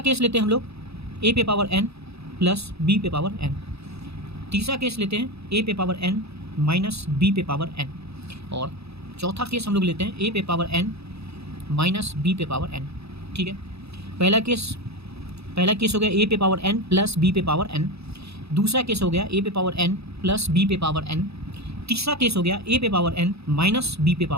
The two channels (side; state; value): left; late; 0.79 ms